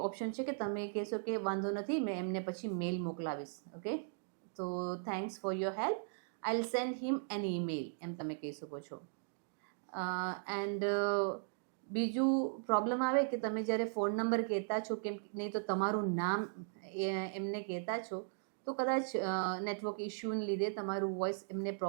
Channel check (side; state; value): left; silent; digital silence